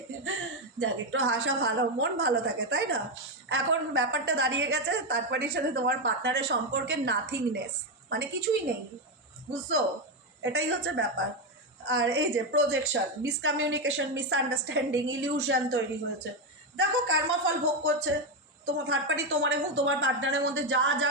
যাক, একটু হাসা ভালো, মন ভালো থাকে, তাই না? এখন ব্যাপারটা দাঁড়িয়ে গেছে থার্ড পার্টির সাথে তোমার পার্টনারের সম্পর্কে নাথিংনেস, মানে কিছুই নেই, বুঝছো? এটাই হচ্ছে ব্যাপার। আর এই যে প্রজেকশন, মিসকমিউনিকেশন, মিসআন্ডারস্ট্যান্ডিং, ইলিউশন তৈরি হয়েছে। দেখো কর্মফল ভোগ করছে তোমার থার্ড পার্টি, তোমার এবং তোমার পার্টনারের মধ্যে যা যা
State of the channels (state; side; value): normal; both; correlation 0.08